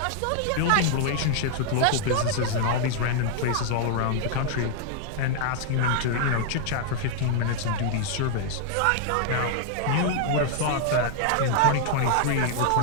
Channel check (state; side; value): different; both; correlation -0.01